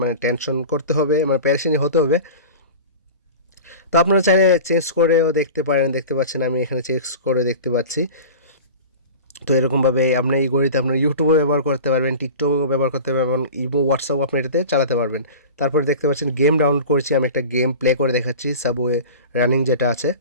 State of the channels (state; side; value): inverted; both; correlation -0.35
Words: টেনশন করতে হবে, মানে প্যারেশানি হতে হবে। তো আপনারা চাইলে চেঞ্জ করেও দেখতে পারেন, দেখতে পাচ্ছেন আমি এখানে চেঞ্জ করে দেখতে পাচ্ছি। তো এরকমভাবে আপনি এই ঘড়িতে আপনার ইউটিউবও ব্যবহার করতে পারবেন, টিকটকও ব্যবহার করতে পারবেন, ইমো, হোয়াটসঅ্যাপও আপনি এটাতে চালাতে পারবেন। তারপরে দেখতে পাচ্ছেন গেম ডাউনলোড করেছি, আমি একটা গেম প্লে করে দেখাচ্ছি, সাবওয়ে রানিং যেটা আছে।